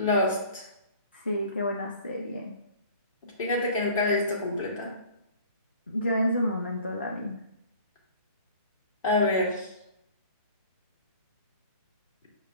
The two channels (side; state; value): both; inverted; correlation -0.47